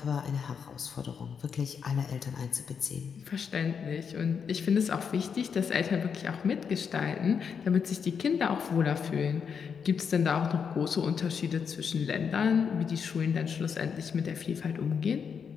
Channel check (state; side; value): quieter; right; 6.6 dB